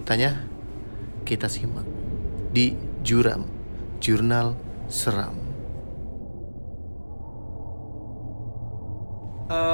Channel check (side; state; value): both; inverted; correlation -1.00